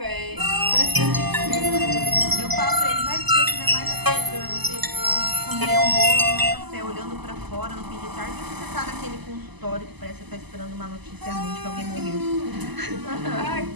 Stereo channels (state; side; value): late; left; 0.99 ms